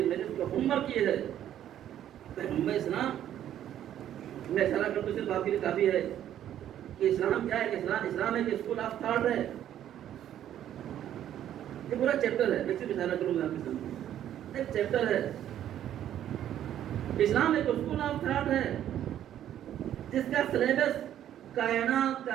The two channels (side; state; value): left; quieter; 11.1 dB